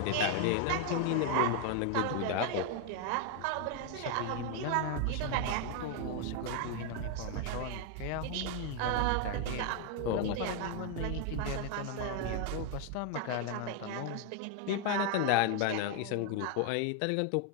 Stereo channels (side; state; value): both; different; correlation 0.01